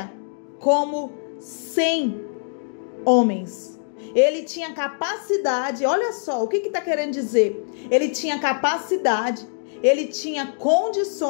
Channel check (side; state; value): right; silent; digital silence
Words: como 100 homens. Ele tinha capacidade, olha só, o que está querendo dizer? Ele tinha capacidade, ele tinha